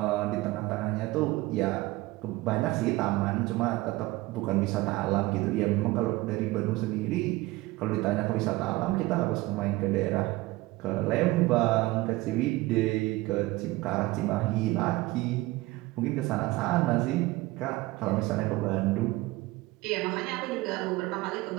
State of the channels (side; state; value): left; quieter; 19.8 dB